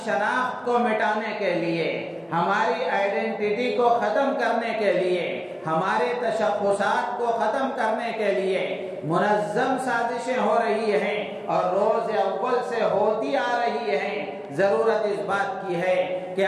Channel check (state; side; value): identical; both; correlation 1.00